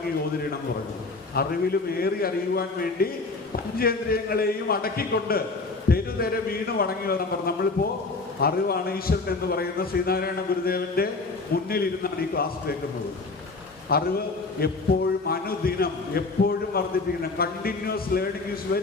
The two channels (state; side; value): quieter; right; 3.7 dB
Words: ഓതിരണം പറഞ്ഞു. അറിവിലുമേറി അറിയുവാൻ വേണ്ടി പഞ്ചേന്ദ്രിയങ്ങളെയും അടക്കിക്കൊണ്ട് തെരുതെരെ വീണ് വണങ്ങി വരണം പറഞ്ഞു. നമ്മളിപ്പോ അറിവാണ് ഈശ്വരൻ എന്ന് പറയുന്ന ശ്രീനാരായണ ഗുരുദേവന്റെ മുന്നിലിരുന്നാണ് ഈ ക്ലാസ് കേൾക്കുന്നത്. അറിവ് എപ്പോഴും അനുദിനം എപ്പോഴും വർദ്ധിപ്പിക്കണം. Continuous learning is